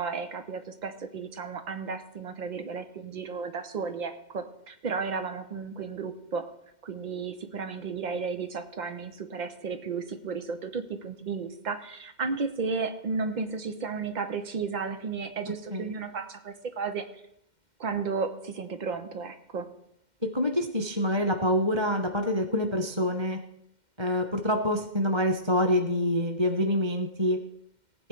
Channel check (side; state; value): left; late; 2.1 ms